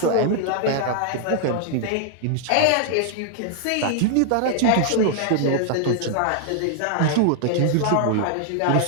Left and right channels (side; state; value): both; different; correlation 0.00